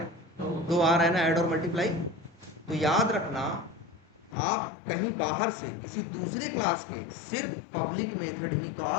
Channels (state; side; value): drops out; right; at 4.4 s